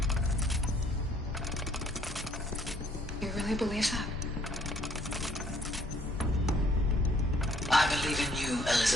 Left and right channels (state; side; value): normal; both; correlation 0.64